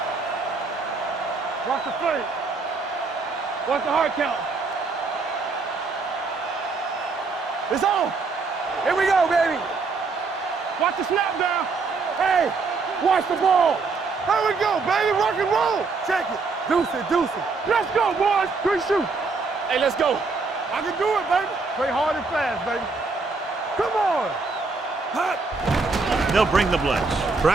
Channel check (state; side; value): quieter; left; 4.2 dB